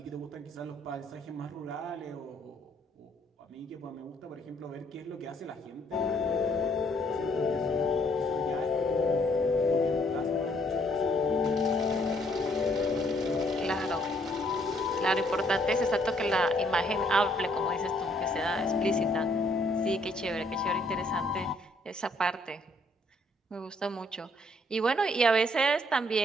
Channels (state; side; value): normal; both; correlation 0.67